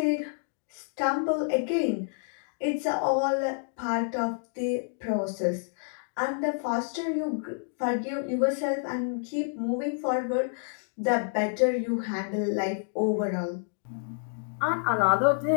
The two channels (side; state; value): right; silent; digital silence